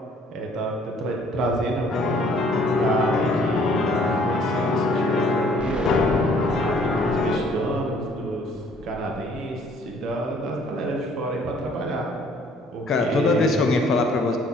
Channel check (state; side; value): normal; both; correlation 0.59